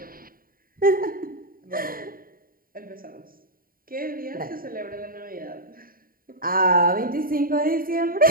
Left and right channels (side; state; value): left; late; 0.42 ms